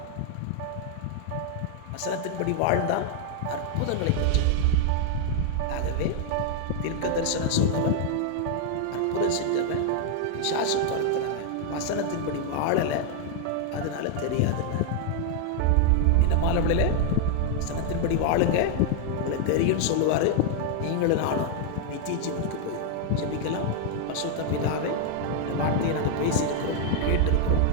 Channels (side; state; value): both; different; correlation 0.00